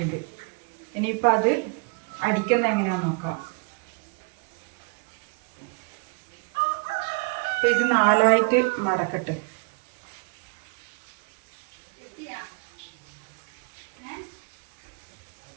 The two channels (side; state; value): left; quieter; 31.7 dB